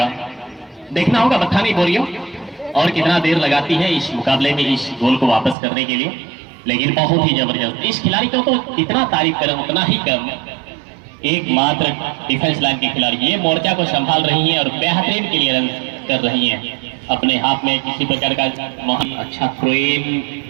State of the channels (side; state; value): left; drops out; at 5.6 s